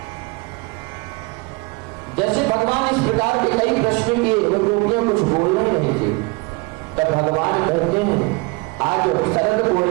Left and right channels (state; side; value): quieter; left; 26.4 dB